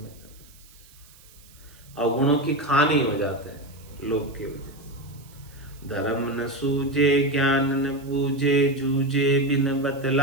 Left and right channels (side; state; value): right; noise; hiss, 25 dB below the sound